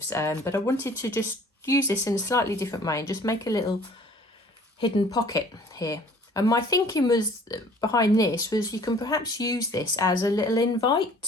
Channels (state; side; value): normal; both; correlation 0.53